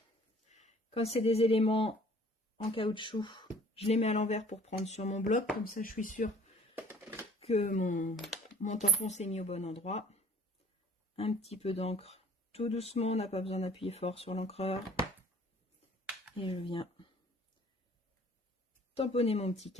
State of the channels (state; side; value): normal; both; correlation 0.52